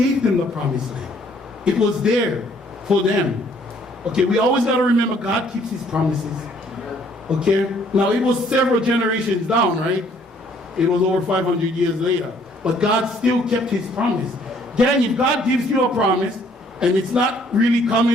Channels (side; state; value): both; normal; correlation 0.62